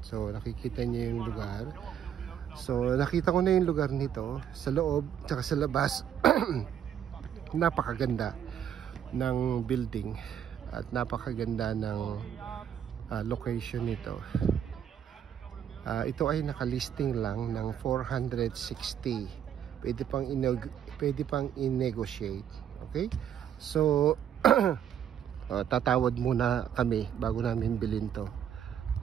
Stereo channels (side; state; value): left; quieter; 9.3 dB